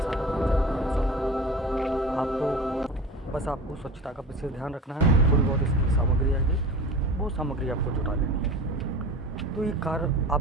हो चाहे पुराना साधक हो। आपको बस आपको स्वच्छता का विशेष ध्यान रखना है। थोड़ी बहुत इसकी सामग्री आएगी, वो सामग्री आपको जुटा लेनी है। तो ये कार्य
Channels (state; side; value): normal; both; correlation 0.36